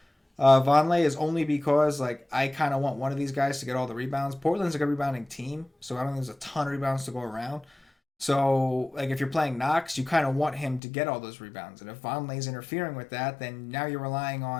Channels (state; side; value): drops out; right; at 10.8 s